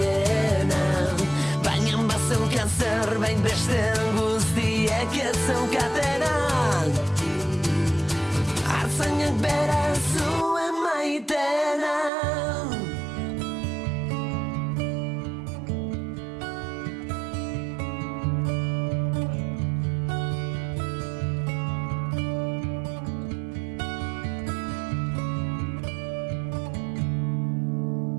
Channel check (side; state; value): left; drops out; at 12.1 s